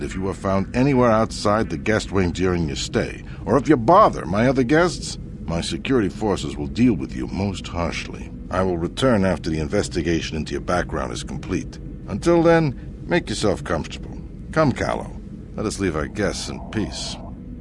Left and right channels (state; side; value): identical; both; correlation 1.00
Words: if you are found anywhere outside the guest wing during your stay, or if you bother my other guests, my security forces will deal with you most harshly. I will return after the investigation into your background is complete. Until then, make yourself comfortable. Come, Callow. Let us leave our guests in peace.